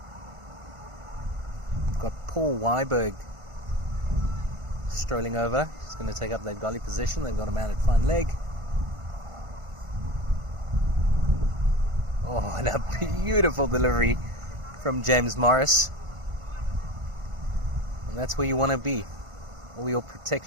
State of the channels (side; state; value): left; late; 1.5 ms